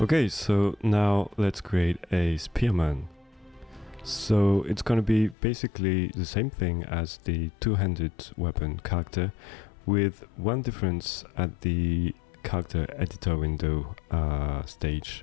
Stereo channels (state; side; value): drops out; right; at 5.4 s